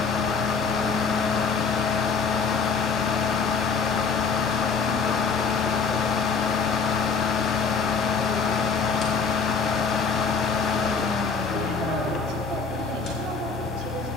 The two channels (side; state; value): right; quieter; 5.2 dB